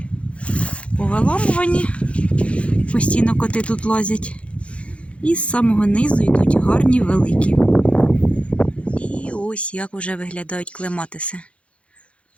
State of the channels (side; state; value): right; late; 0.061 ms